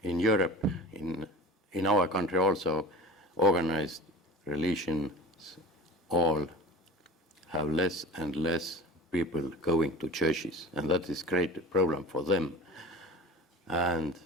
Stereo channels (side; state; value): both; normal; correlation 0.37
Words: in Europe, in our country also, organized religions all have less and less people going to churches, and that is great problem for them. And